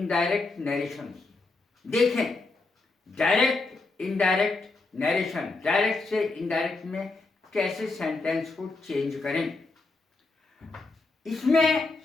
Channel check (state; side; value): quieter; right; 3.5 dB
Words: नरेशन देखें। डायरेक्ट इनडायरेक्ट नरेशन, डायरेक्ट से इनडायरेक्ट में कैसे सेंटेंस को चेंज करें। इसमें